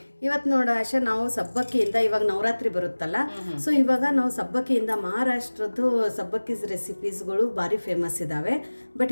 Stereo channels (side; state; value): both; inverted; correlation -1.00